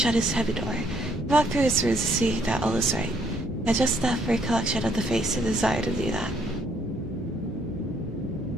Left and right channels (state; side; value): normal; both; correlation 0.68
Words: his heavy door, he walked through his rooms to see that all was right. He had just enough recollection of the face to desire to do that.